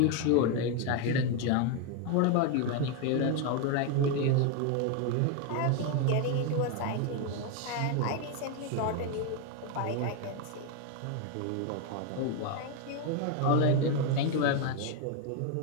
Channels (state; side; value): different; both; correlation 0.02